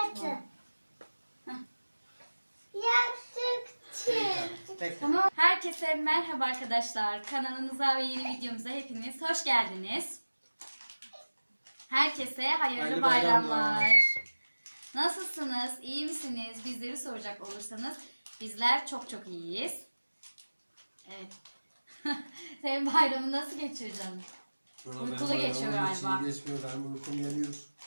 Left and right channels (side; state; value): both; inverted; correlation -1.00